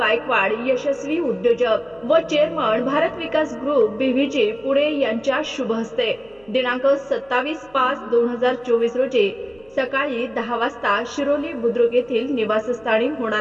यशस्वी उद्योजक व चेअरमन भारत विकास ग्रुप बीव्हीजी पुणे यांच्या शुभ हस्ते दिनांक 27/5/2024 रोजी सकाळी 10 वाजता शिरोली बुद्रुक येथील निवासस्थानी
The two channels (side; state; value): right; noise; hum, 30 dB below the sound